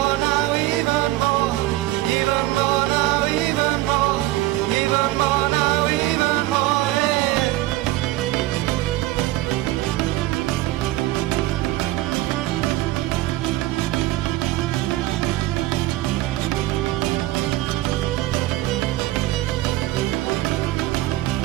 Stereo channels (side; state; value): left; quieter; 17.0 dB